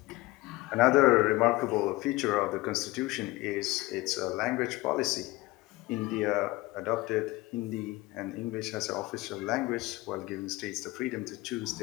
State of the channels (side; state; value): right; quieter; 20.2 dB